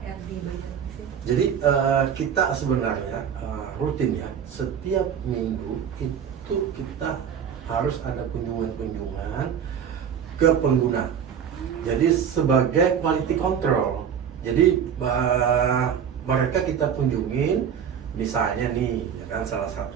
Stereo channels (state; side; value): quieter; left; 8.1 dB